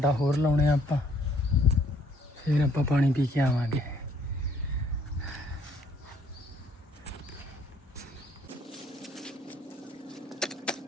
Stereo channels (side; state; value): both; normal; correlation 0.64